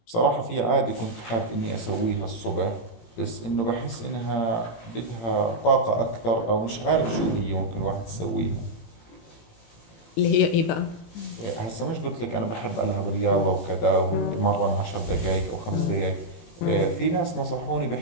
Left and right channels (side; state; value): right; late; 17 ms